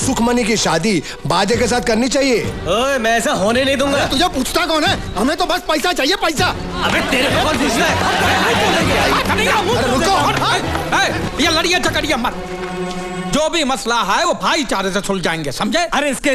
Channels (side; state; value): both; identical; correlation 1.00